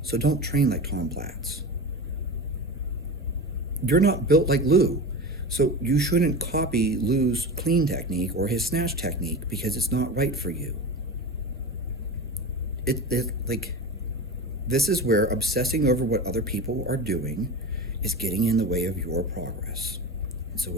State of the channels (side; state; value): both; normal; correlation 0.28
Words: so don't train like Tom Platz. You're not built like Lou, so you shouldn't copy Lou's clean technique or his snatch technique because it's not right for you. This is where obsessing over what other people are doing is getting in the way of your progress. And so